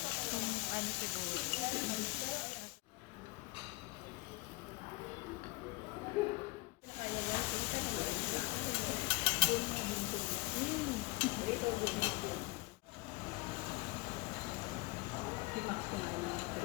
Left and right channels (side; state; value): right; quieter; 22.9 dB